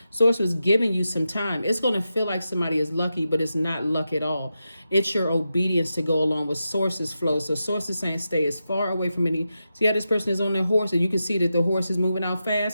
source was giving you some time. It's going to feel like somebody is lucky, but it's not luck at all. It's your obedience to go along with source's flow. So source is saying stay as far away from any. See how this person is on their horse, and you can see that the horse is moving out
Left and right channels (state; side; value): inverted; both; correlation -0.89